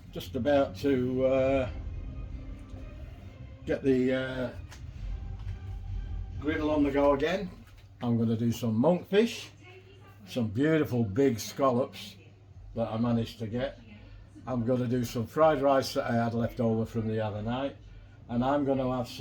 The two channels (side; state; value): both; identical; correlation 1.00